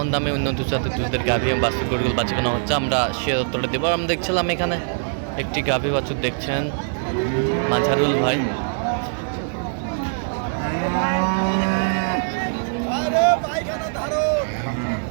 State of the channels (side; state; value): left; silent; 64 dB below the other